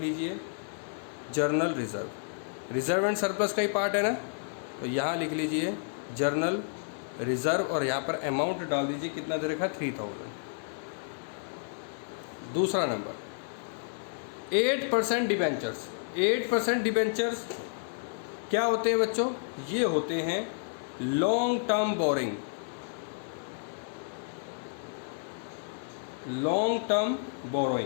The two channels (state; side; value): silent; right; 57 dB below the other